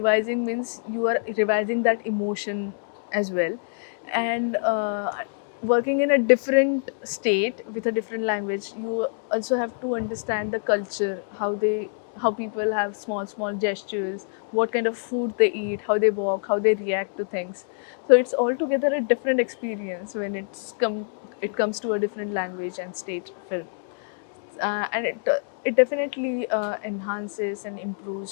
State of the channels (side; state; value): right; silent; digital silence